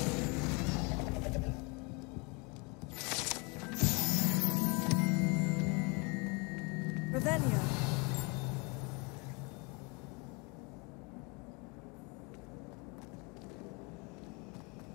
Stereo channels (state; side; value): quieter; right; 30.0 dB